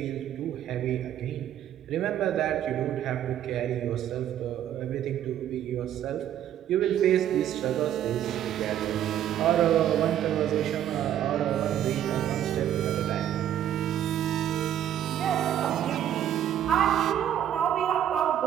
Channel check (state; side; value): quieter; left; 10.8 dB